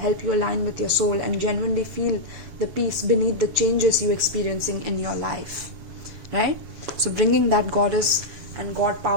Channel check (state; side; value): late; left; 7.4 ms